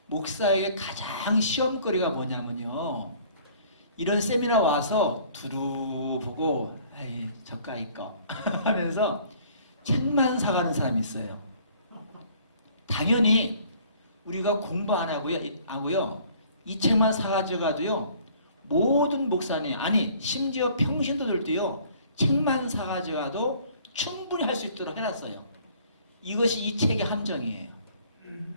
목사에게 가장 시험거리가 뭐냐면요. 이런 세미나 와서 두루 보고 에이 저까이 거 하면서 책만 사가는 사람이 있어요. 당연히 우리가 공부 안 하고요. 이 책만 사가지고 가도요. 모든 목사님 아니 심지어 평신도들도요. 책만 사가지고 가도 충분히 할 수 있도록 해놨어요. 이것이 이 책의 함정이에요.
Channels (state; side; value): inverted; both; correlation -0.56